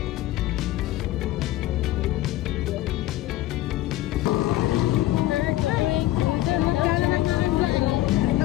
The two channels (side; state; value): right; quieter; 15.4 dB